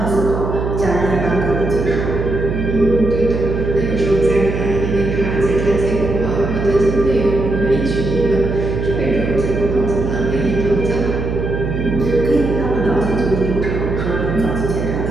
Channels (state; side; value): noise; right; hum, 3 dB below the sound